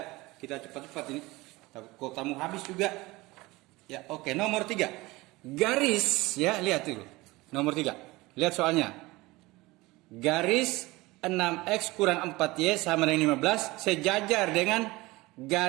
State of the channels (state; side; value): quieter; left; 21.0 dB